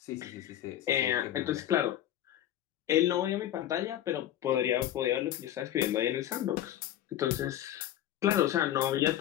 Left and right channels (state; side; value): quieter; right; 12.1 dB